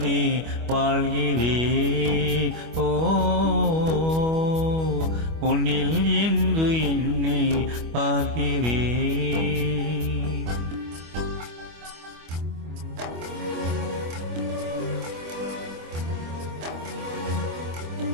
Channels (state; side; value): late; left; 25 ms